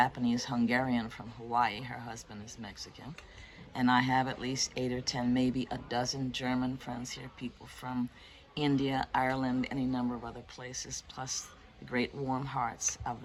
from Hawaii. Her husband is Mexican. And I have at least 8 or 10, maybe a dozen German friends here, people from India, Ireland, any number of other places, plus the great warm hearts of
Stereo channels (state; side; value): identical; both; correlation 1.00